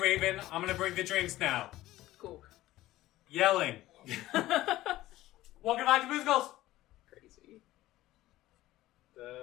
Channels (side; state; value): right; quieter; 16.1 dB